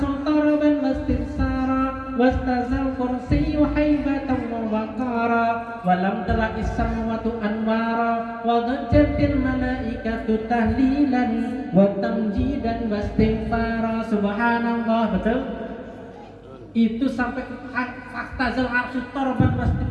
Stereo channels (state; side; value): identical; both; correlation 1.00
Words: taraban wastinsara wastazal kursiyu haibatan wa waqara walam tala issamwatu anwara wa dhajjatil malaikatu tahlilan wa tamjidan wastighfara. Subhanallah, betul? Itu sampai fahtazal arsul taraban